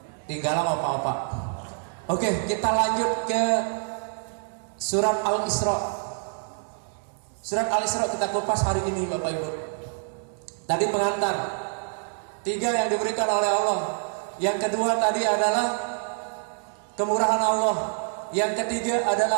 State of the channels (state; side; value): silent; left; 59 dB below the other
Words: Tinggalan apa-apa. Oke, kita lanjut ke surat Al-Isra. Surat Al-Isra kita kupas hari ini Bapak Ibu. Tadi pengantar 3 yang diberikan oleh Allah. Yang kedua tadi adalah kemurahan Allah. Yang ketiga